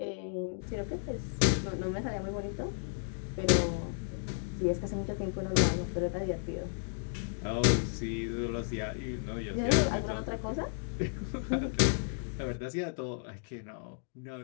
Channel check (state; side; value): silent; right; digital silence